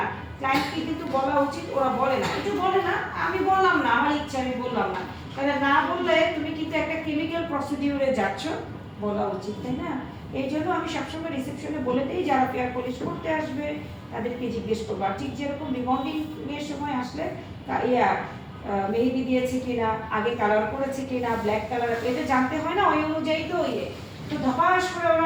ক্লায়েন্টকে কিন্তু বলা উচিত, ওরা বলে না। একটু বলে না, আমি বললাম না, আমার ইচ্ছা, আমি বললাম না। তাহলে না বললে তুমি কিন্তু একটা কেমিক্যাল প্রসিডিউরে যাচ্ছ, বলা উচিত, তাই না? এই জন্য আমি সবসময় রিসেপশনে বলে দিই, যারা ফেয়ার পলিশ করতে আসবে তাদেরকে জিজ্ঞেস করবো। আর ঠিক যেরকম রিবন্ডিং এর সময় আসলে মেহেদি দিয়েছে কিনা, আগে কালার করেছে কিনা, ব্ল্যাক কালার, এটা জানতে হয় না? ওই অনুযায়ী তো তো ধপাস করে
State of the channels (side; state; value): both; identical; correlation 1.00